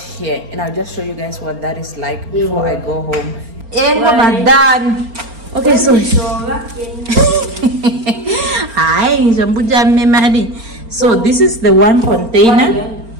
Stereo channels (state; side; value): late; left; 4.4 ms